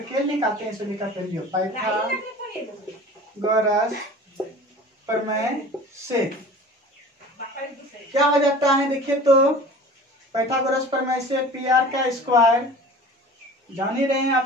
निकालते हैं सभी का वैल्यू। पाइथागोरस प्रमेय से क्या हो जाता है, देखिए तो पाइथागोरस प्रमेय से पी आर का स्क्वायर जान ही रहे हैं आप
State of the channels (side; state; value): both; normal; correlation 0.41